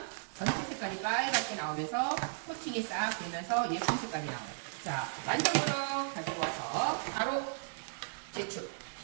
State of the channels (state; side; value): silent; left; digital silence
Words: 전체 색깔이 빨갛게 나오면서 코팅이 싹 되면서 예쁜 색깔이 나와요. 자, 완성으로 가지고 와서 바로 제축.